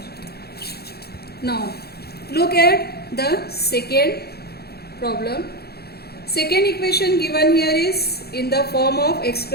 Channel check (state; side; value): late; right; 0.46 ms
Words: Now look at the second problem. Second equation given here is in the form of x